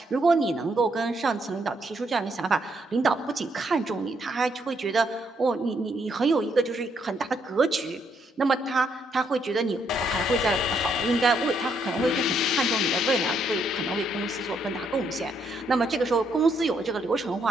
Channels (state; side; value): normal; both; correlation 0.74